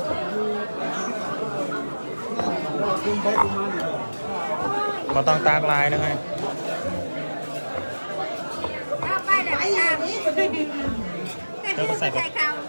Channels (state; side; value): inverted; both; correlation -1.00